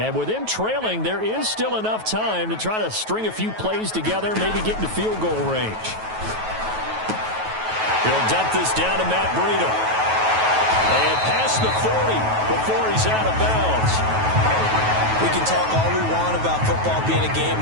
with them trailing, there is still enough time to try to string a few plays together, maybe get into field goal range. He'll dump this down to Matt Breida. And past the 40 before he's out of bounds. We can talk all we want about football being a game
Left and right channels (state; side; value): late; left; 9.2 ms